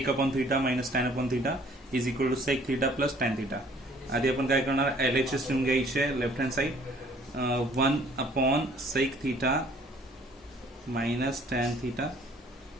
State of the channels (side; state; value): both; normal; correlation 0.57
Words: minus tan/θ is equal to sec θ plus tan θ. आधी आपण काय करणार, LHS लिहून घ्यायचे left hand side. 1/sec θ minus tan theta